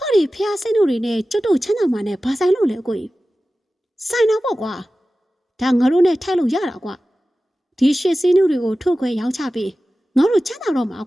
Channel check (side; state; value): both; normal; correlation 0.95